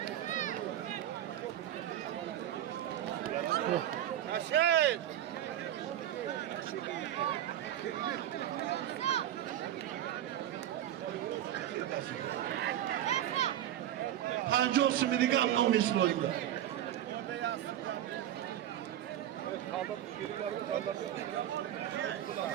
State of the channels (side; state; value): left; quieter; 11.8 dB